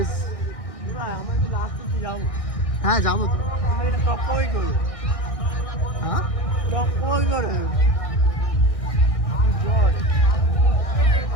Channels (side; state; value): right; late; 1.6 ms